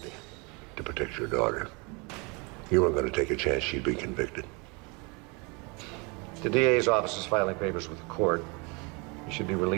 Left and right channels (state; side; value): quieter; left; 30.0 dB